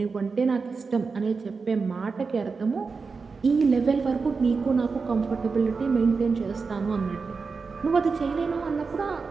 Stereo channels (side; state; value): left; quieter; 4.7 dB